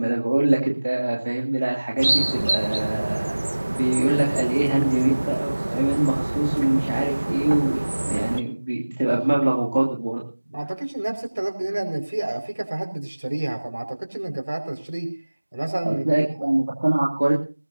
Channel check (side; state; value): both; inverted; correlation -1.00